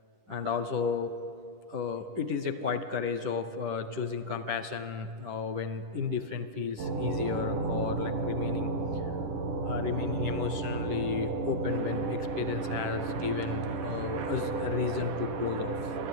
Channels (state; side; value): late; left; 10 ms